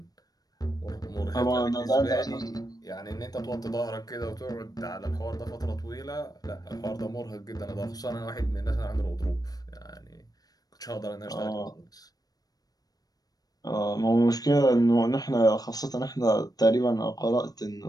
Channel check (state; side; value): late; right; 0.18 ms